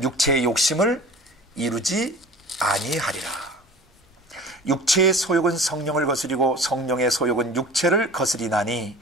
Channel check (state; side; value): normal; both; correlation 0.42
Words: 육체의 욕심을 이루지 아니하리라. 육체의 소욕은 성령을 거스리고 성령의 소욕은 육체를 거스리나니